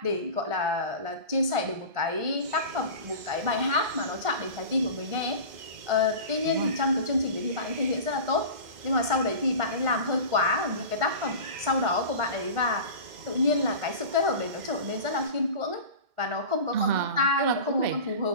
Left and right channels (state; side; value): late; left; 2.1 ms